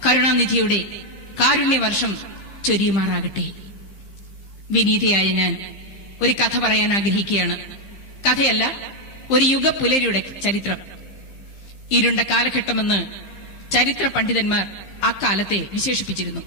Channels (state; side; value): late; right; 15 ms